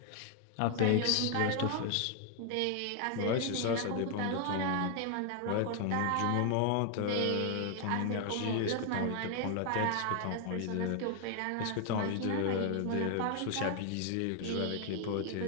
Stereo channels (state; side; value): different; both; correlation 0.00